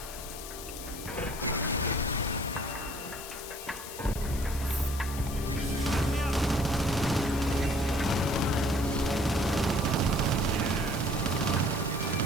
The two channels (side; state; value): left; noise; hiss, 11 dB below the sound